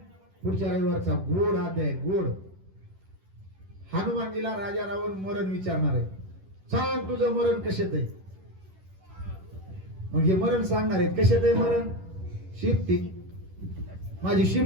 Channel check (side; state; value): left; late; 11 ms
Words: पुढच्या रविवारचा गोड अध्याय गोड. हनुमानजीला राजा रावण मरण विचारणार आहे. सांग तुझं मरण कशात आहे. मग हे मरण सांगणार आहेत कशात आहे मरण. शिफ्टी माझी